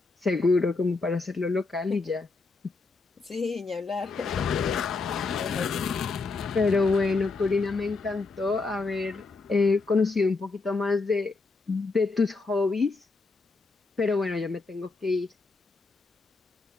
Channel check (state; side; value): quieter; right; 3.9 dB